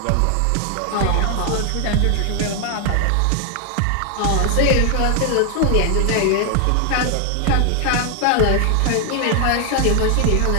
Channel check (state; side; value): different; both; correlation 0.00